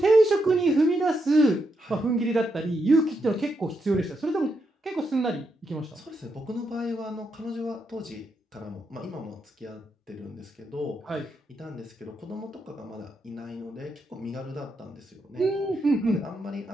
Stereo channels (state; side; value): normal; both; correlation 0.82